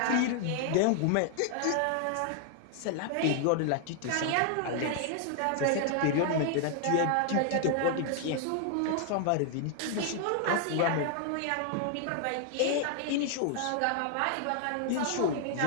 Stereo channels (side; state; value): both; different; correlation 0.00